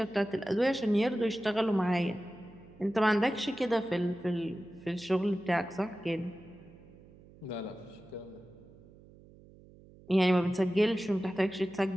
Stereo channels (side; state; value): right; noise; hum, 23 dB below the sound